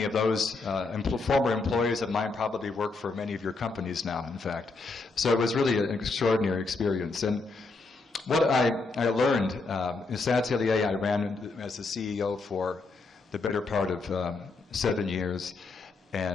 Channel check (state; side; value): quieter; right; 3.8 dB